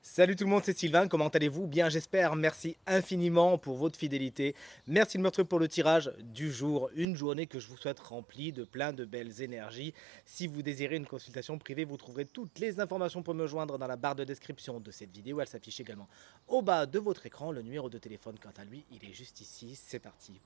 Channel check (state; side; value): drops out; left; at 7.1 s